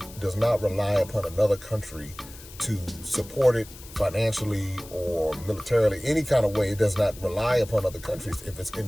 rely upon another country to support it financially or militarily, any kind of way. It does not rely upon other countries if it's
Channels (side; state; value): left; noise; hiss, 18 dB below the sound